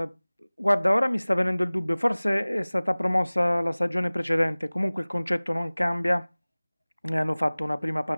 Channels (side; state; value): both; inverted; correlation -1.00